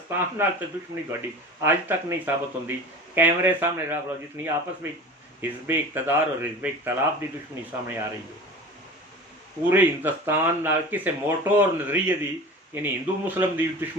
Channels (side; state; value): both; normal; correlation 0.36